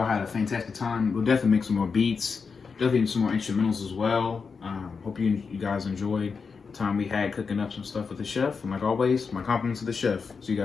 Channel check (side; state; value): right; quieter; 5.3 dB